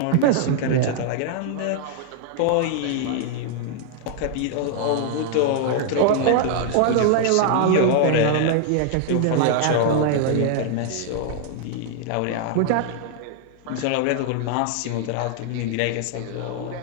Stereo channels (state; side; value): different; both; correlation 0.00